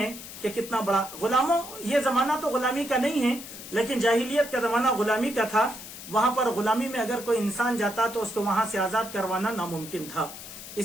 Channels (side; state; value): left; noise; hiss, 13 dB below the sound